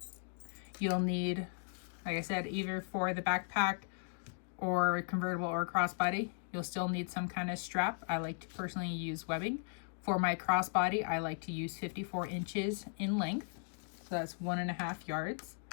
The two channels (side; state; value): right; silent; digital silence